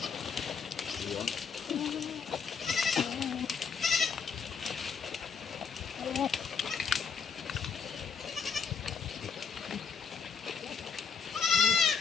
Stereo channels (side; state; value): right; quieter; 5.7 dB